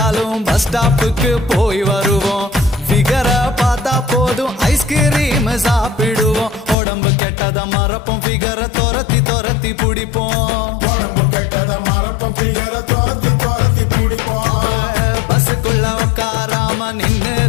பஸ் ஸ்டாப்புக்கு போய் வருவோம், ஃபிகரை பார்த்தா போதும் ஐஸ்கிரீம் சாப்பிடுவோம், உடம்பு கெட்டத மறப்போம் ஃபிகரை துரத்தி துரத்தி பிடிப்போம், உடம்பு கெட்டத மறப்போம் ஃபிகரை துரத்தி துரத்தி பிடிப்போம். பஸ்ஸுக்குள்ள உட்காராம நின்னு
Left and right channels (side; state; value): right; drops out; at 6.8 s